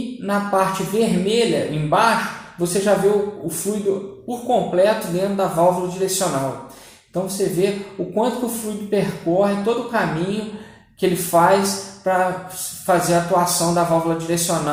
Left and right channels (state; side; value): identical; both; correlation 1.00